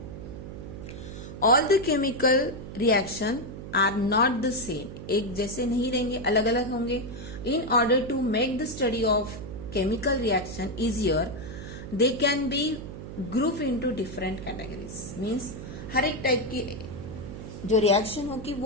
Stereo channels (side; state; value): right; noise; hum, 11 dB below the sound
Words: All the chemical reaction are not the same, एक जैसे नहीं रहेंगे, अलग अलग होंगे। In order to make the study of chemical reaction easier they can be group into different categories. Means हर एक type की जो रिएक्शन होगी